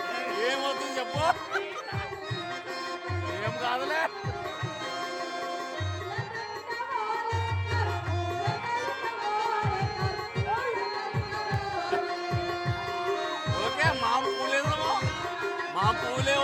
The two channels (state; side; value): identical; both; correlation 1.00